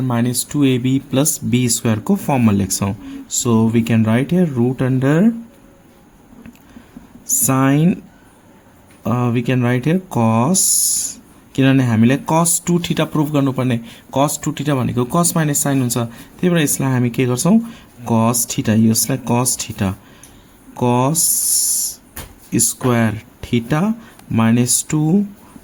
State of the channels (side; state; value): both; identical; correlation 1.00